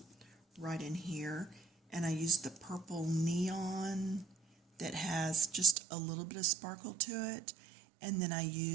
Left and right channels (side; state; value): left; drops out; at 5.8 s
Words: right in here, and I used the purple neon that has just a little bit of sparkle to it, and then I